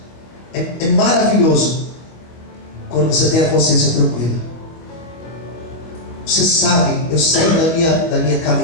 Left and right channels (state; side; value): late; right; 25 ms